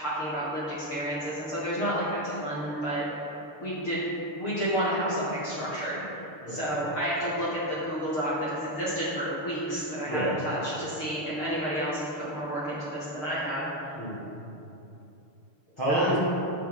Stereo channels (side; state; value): right; late; 6.6 ms